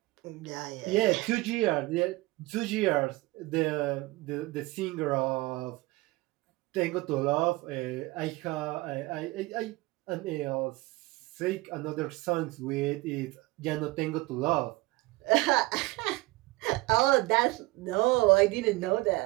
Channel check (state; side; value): quieter; left; 21.1 dB